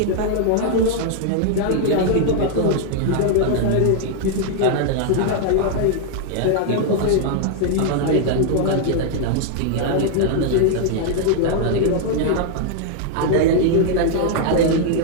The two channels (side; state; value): both; different; correlation -0.01